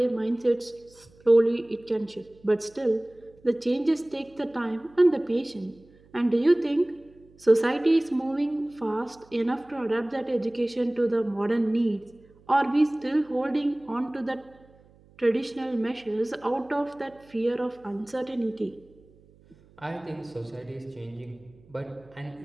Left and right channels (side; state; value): right; noise; hum, 28 dB below the sound